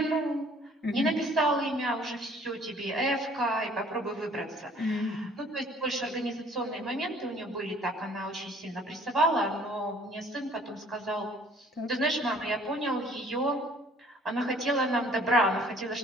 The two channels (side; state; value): both; normal; correlation 0.56